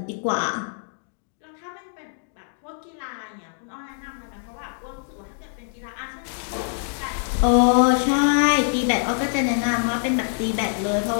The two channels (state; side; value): silent; right; digital silence